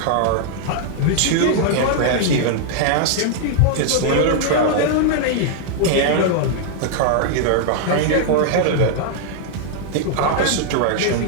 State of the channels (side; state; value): both; different; correlation -0.01